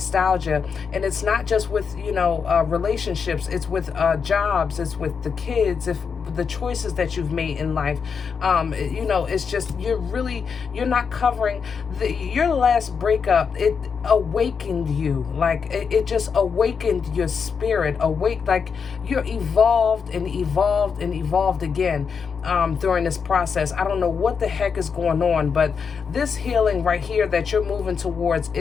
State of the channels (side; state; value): right; quieter; 6.0 dB